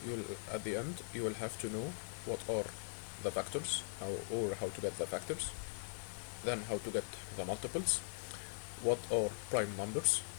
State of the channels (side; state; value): right; silent; 50 dB below the other